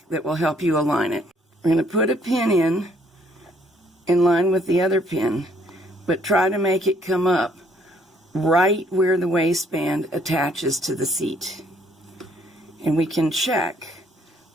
that will help you align it. We're going to put a pin in line with the other pin, but try to make it come up right where the waistband attaches to the seat. And we can check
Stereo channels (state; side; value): normal; both; correlation 0.65